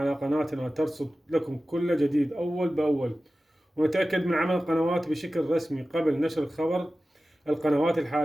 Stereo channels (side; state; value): both; normal; correlation 0.95